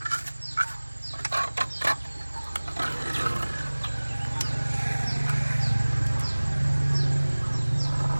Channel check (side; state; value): both; inverted; correlation -1.00